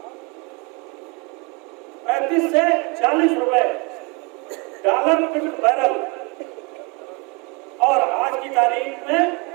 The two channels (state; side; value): quieter; left; 29.1 dB